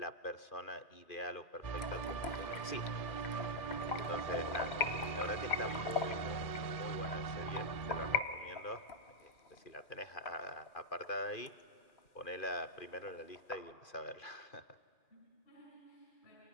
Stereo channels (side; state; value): right; late; 2.4 ms